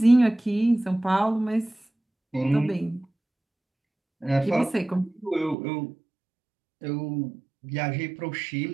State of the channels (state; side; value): drops out; left; at 5.6 s